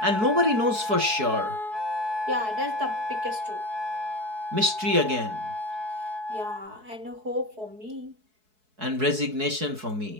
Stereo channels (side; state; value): left; late; 4.6 ms